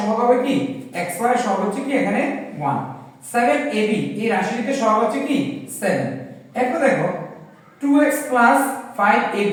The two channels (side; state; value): both; identical; correlation 1.00